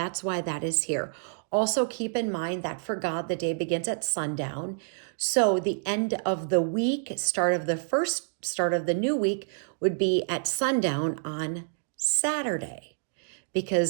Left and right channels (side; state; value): left; silent; digital silence